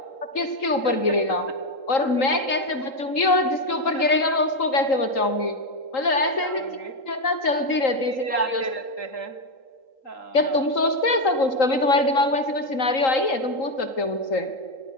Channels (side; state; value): right; late; 3.8 ms